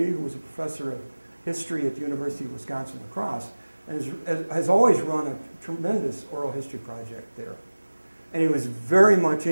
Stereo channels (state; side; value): inverted; both; correlation -1.00